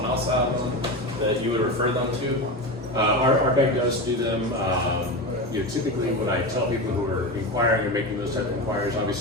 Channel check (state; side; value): normal; both; correlation 0.21